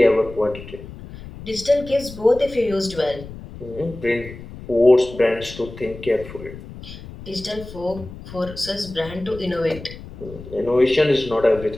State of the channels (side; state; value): left; noise; rumble, 14 dB below the sound